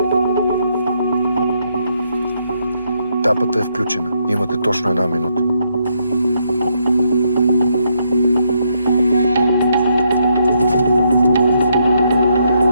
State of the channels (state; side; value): inverted; both; correlation -0.76